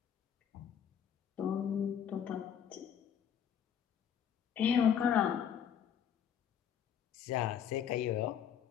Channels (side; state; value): right; quieter; 8.6 dB